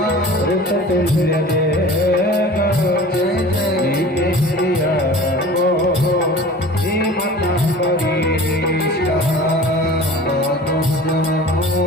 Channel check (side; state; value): both; normal; correlation 0.41